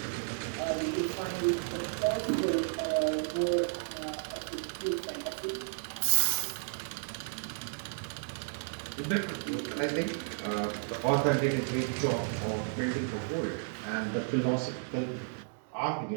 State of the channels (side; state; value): left; silent; digital silence